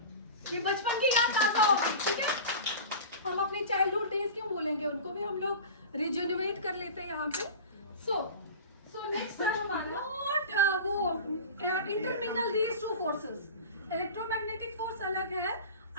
ये बचपन की याद ताजा होगी, ठीक है. हम अपने चाइल्डहुड डेज क्यों बोलेंगे, उनको भी हम लोग रिजेनरेट कर लेते हैं यहाँ पे. सो नेक्स्ट है हमारा वो intermingle these two forces. Electromagnetic force अलग है,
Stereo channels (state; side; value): inverted; both; correlation -0.33